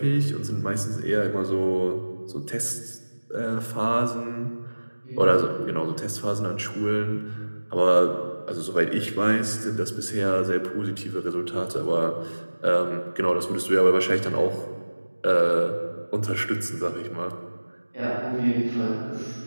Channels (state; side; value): inverted; both; correlation -1.00